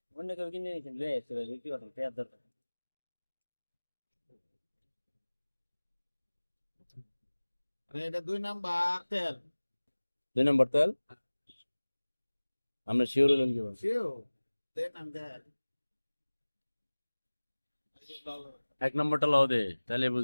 অন্য কেউ কিনে নিয়েছেন লয়ে আসছে ভাই কি কথা দেওয়ার দরকার। এটা 2 নাম্বার তেল। 2 নম্বর তেল? আমরা শিওর হলেন কি বলছেন? শিও দেন আম দেন। 1 নম্বরটা লাও দে, তাহলে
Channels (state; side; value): inverted; both; correlation -1.00